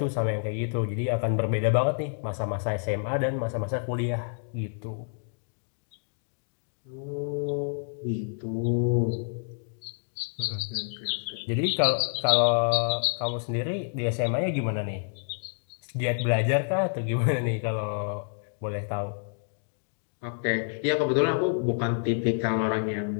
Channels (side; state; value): right; silent; digital silence